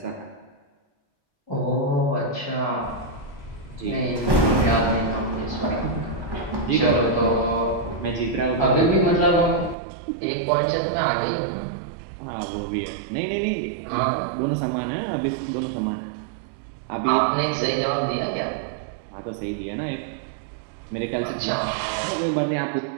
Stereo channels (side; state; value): left; drops out; at 9.8 s